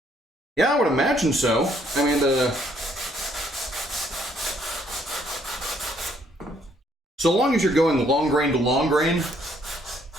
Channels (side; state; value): both; normal; correlation 0.67